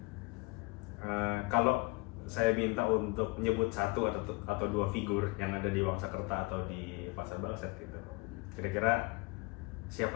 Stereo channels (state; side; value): quieter; right; 26.2 dB